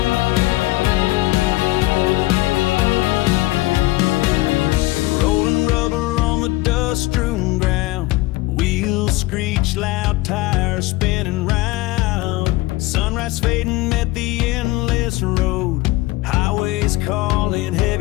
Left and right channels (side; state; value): right; quieter; 19.5 dB